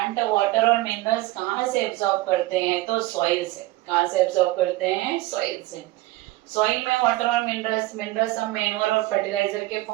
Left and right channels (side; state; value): left; quieter; 18.2 dB